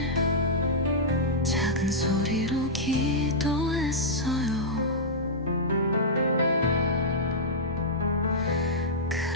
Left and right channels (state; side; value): normal; both; correlation -0.11